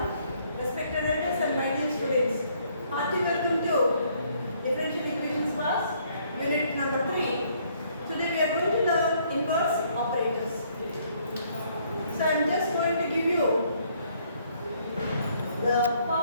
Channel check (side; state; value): both; inverted; correlation -0.66